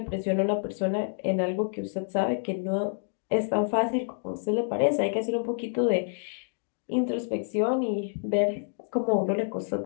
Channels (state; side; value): silent; right; digital silence